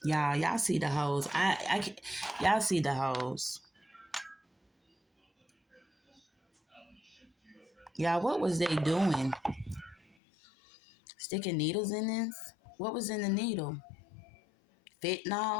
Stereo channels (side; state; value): right; drops out; at 10.2 s